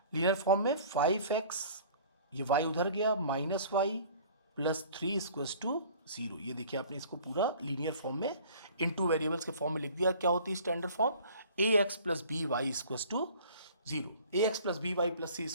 लीनियर फॉर्म में 5x, ये y उधर गया, -y + 3 = 0। ये देखिए आपने इसको पूरा लीनियर फॉर्म में इन टू वेरिएबल्स के फॉर्म में लिख दिया। क्या होती है standard form, ax + by = 0, ax + by + c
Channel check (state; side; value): inverted; both; correlation -0.48